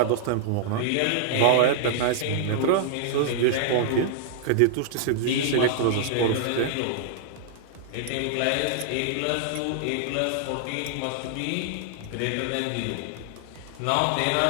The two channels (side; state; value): both; different; correlation -0.01